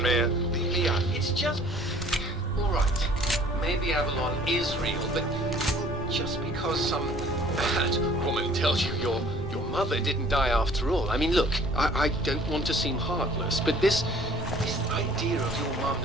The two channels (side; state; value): both; normal; correlation 0.53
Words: man. Yeah, it's just... all right. Maybe Avalon is real, but just because some bad woman tells you your mother didn't die after all. I mean, look, I don't want to seem heartless, but this idea of your mum